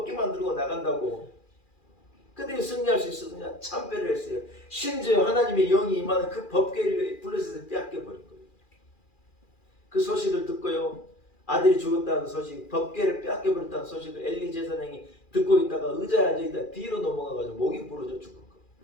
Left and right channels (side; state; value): right; late; 2.4 ms